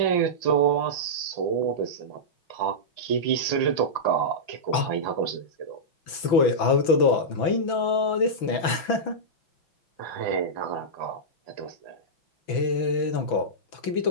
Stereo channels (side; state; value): right; late; 6.0 ms